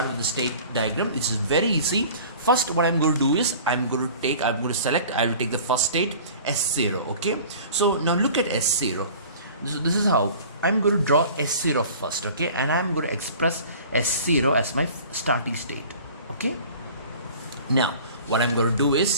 with the state diagram. It's very easy. First, what I'm going to do is I will take the first state, S0. Okay, so now look at S0. So this is how I'm going to draw S0 first. Okay, and I'm going to express S0 as my starting state. Okay, now what I'm going to do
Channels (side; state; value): both; inverted; correlation -0.44